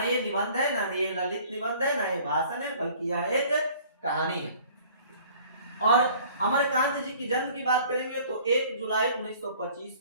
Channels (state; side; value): inverted; both; correlation -0.52